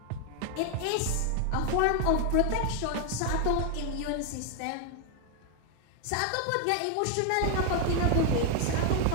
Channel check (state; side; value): different; both; correlation 0.00